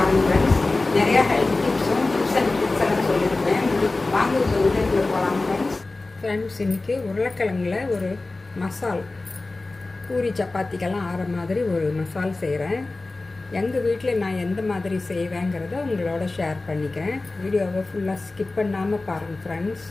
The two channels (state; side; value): quieter; right; 3.3 dB